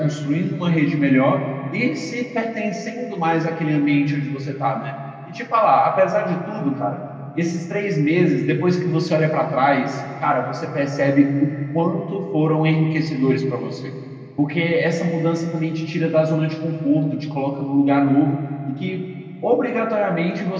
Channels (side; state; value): both; identical; correlation 1.00